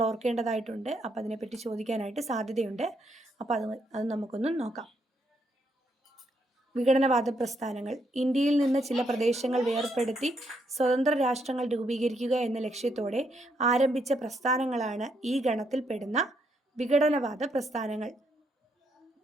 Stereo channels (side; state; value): both; normal; correlation 0.76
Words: ഓർക്കേണ്ടതായിട്ടുണ്ട്. അപ്പോൾ അതിനെപ്പറ്റി ചോദിക്കാനായിട്ട് സാധ്യതയുണ്ട്. അപ്പോൾ അത് നമുക്കൊന്ന് നോക്കാം. വിഘടനവാദ പ്രസ്ഥാനങ്ങൾ ഇന്ത്യയിൽ നിന്ന് ചില പ്രദേശങ്ങൾ വേർപെടുത്തി സ്വതന്ത്ര രാഷ്ട്രങ്ങൾ രൂപീകരിക്കുക എന്ന ലക്ഷ്യത്തോടെ ആരംഭിച്ച പ്രസ്ഥാനങ്ങളാണ് ഈ ഗണത്തിൽപ്പെടുന്ന വിഘടനവാദ പ്രസ്ഥാനങ്ങൾ.